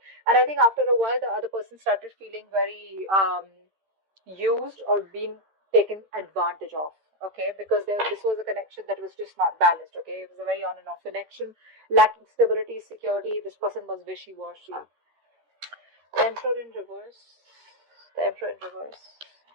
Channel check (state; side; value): late; left; 13 ms